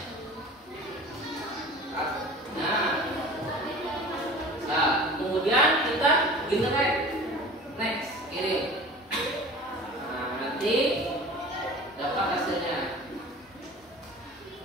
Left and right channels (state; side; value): normal; both; correlation 0.40